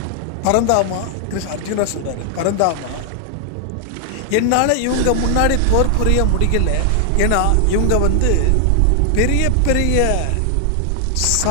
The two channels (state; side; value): different; both; correlation 0.00